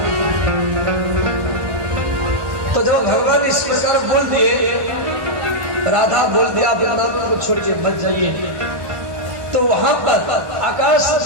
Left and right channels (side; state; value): left; late; 1.1 ms